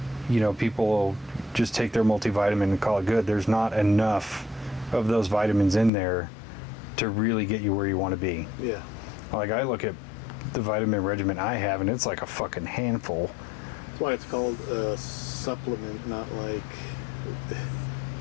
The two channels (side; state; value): right; drops out; at 5.9 s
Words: you know, people will just take their multivitamin and call it good. There's not enough of those vitamins in there to really get you where you want to be. Yeah. Like, I look at the vitamin regimen I have, and it's like a fucking handful. That's why it's called a supplement, not like